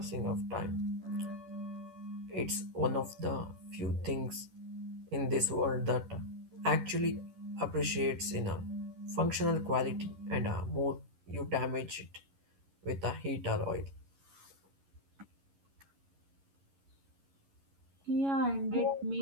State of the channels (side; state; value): left; late; 11 ms